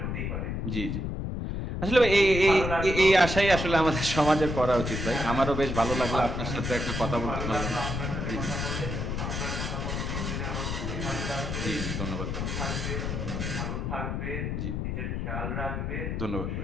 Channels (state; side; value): noise; left; rumble, 2 dB below the sound